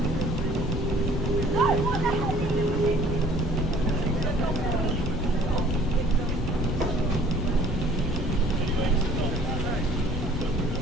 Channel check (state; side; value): normal; both; correlation 0.54